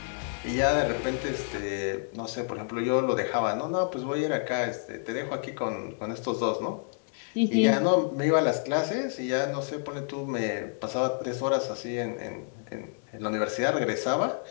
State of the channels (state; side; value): silent; right; digital silence